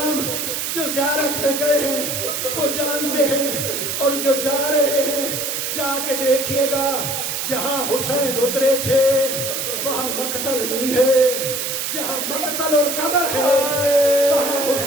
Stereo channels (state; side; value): noise; right; hiss, 2 dB below the sound